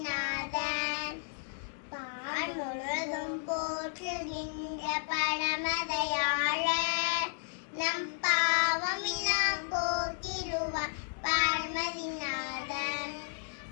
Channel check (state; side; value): silent; right; digital silence